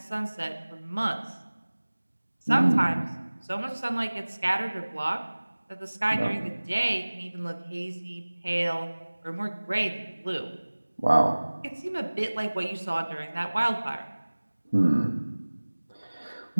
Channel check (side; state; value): both; inverted; correlation -1.00